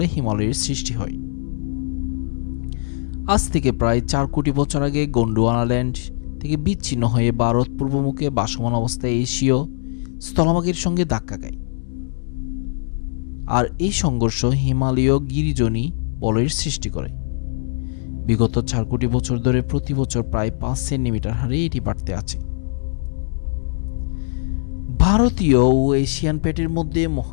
হিমালয়ের সৃষ্টি হয়। আজ থেকে প্রায় 4 কোটি বছর আগে গোন্ডওয়ানাল্যান্ড থেকে বিচ্ছিন্ন হয়ে ভারত পূর্বমুখে ভাসমান অবস্থায় এশীয় স্থলভাগের সঙ্গে ধাক্কা খায়। আর এই সংঘর্ষ হিমালয় গিরিজনী বলয়ের সৃষ্টি করে। বিগত 4 কোটি বছর ধরে প্রতি বছর প্রায় 5 সেন্টিমিটার হারে এটি বাড়তে আছে। ভারতীয় ও এশিয়ান প্লেটের মধ্যে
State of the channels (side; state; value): right; silent; 65 dB below the other